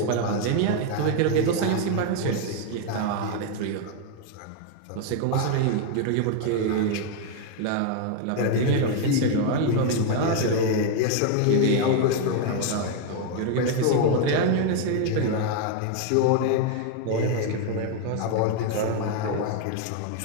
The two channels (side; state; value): both; different; correlation 0.01